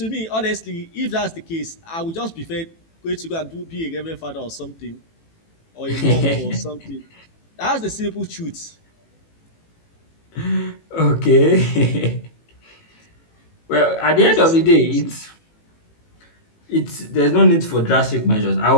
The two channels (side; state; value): right; late; 18 ms